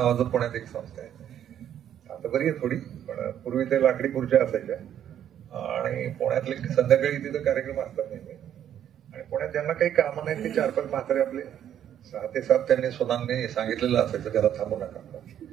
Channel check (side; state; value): left; quieter; 10.2 dB